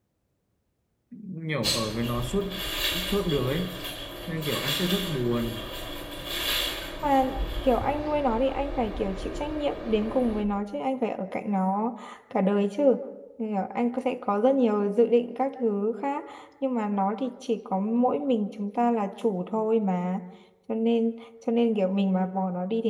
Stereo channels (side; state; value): both; identical; correlation 1.00